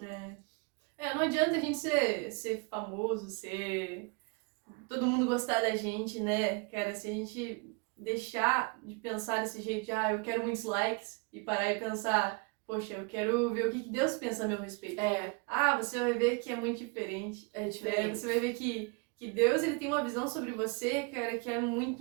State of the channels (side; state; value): left; quieter; 31.6 dB